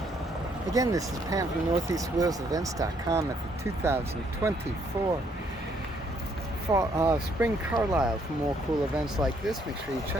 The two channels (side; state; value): both; normal; correlation 0.69